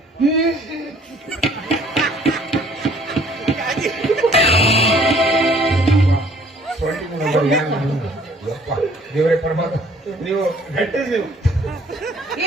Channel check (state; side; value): normal; both; correlation 0.57